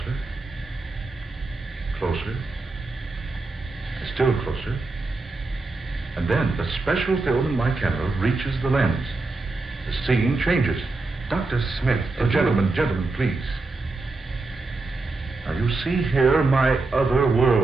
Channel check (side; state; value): left; quieter; 3.4 dB